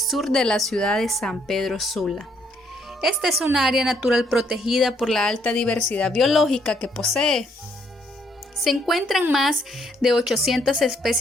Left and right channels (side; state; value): both; normal; correlation 0.70